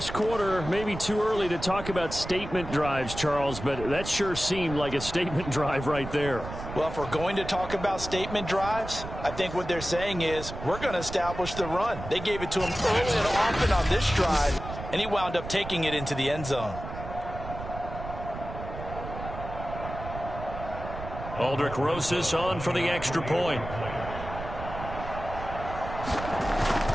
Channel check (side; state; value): right; noise; rumble, 9 dB below the sound